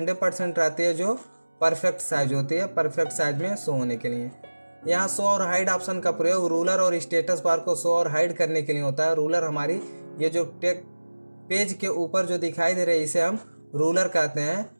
रहती है, जो परफेक्ट साइज होती है, परफेक्ट साइज में शो होने के लिए। यहाँ शो और हाइड ऑप्शन का प्रयोग रूलर और स्टेटस बार को शो और हाइड करने के लिए होता है। रूलर हमारी ये जो पेज के ऊपर जो दिखाई दे रहे हैं इसे हम रूलर कहते हैं।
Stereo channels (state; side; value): inverted; both; correlation -1.00